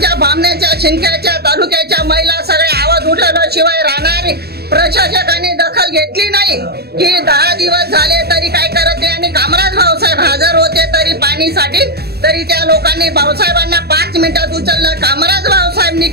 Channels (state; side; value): late; left; 0.47 ms